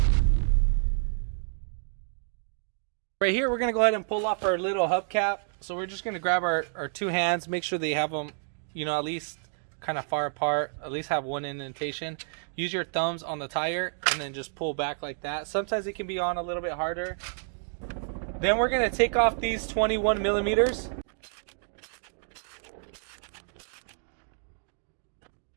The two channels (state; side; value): silent; left; digital silence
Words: Right here, we're going to go ahead and pull off our little hubcap. So we're just going to grab our two hands, make sure they have them, at least kind of far apart, at least have one indentation. Use your thumbs on the tire and then just pull back like that. Sometimes it can be on a little bit harder. Then we're going to take off these 21 millimeters.